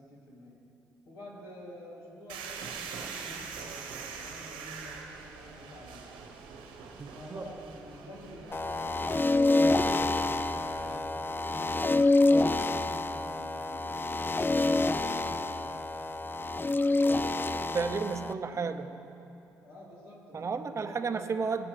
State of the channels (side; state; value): both; normal; correlation 0.86